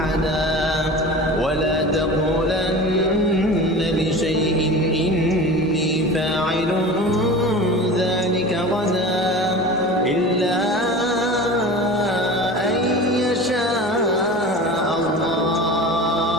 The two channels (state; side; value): normal; both; correlation 0.35